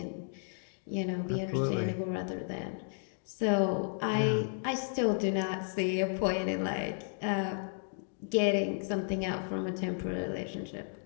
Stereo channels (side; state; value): right; silent; digital silence